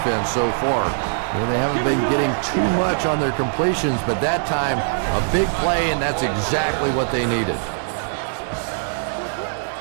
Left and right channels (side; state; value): left; silent; 65 dB below the other